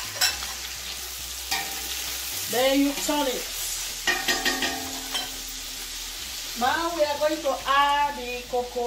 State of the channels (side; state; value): both; identical; correlation 1.00